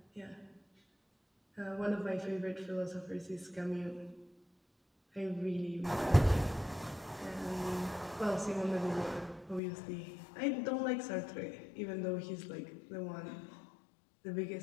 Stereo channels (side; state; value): right; drops out; at 9.6 s